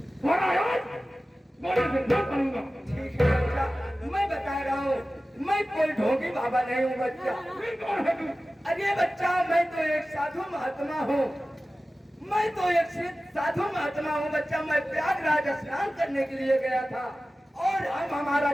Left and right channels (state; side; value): normal; both; correlation 0.96